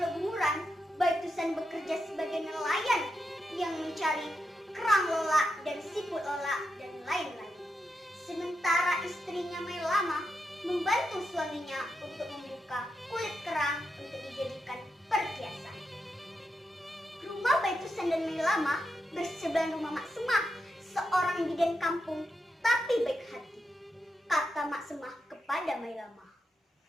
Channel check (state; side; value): normal; both; correlation 0.86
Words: Bunguran, Baitusan bekerja sebagai nelayan yang mencari kerang lelak dan siput lelak dan lain-lain. Sementara istrinya Mailama membantu suaminya untuk membuka kulit kerang untuk dijadikan perhiasan. Rumah Baitusan dan Mailama bersebelahan rumah Mak Semah, seorang bidan kampung tapi baik hati. Kata Mak Semah kepada Mailama,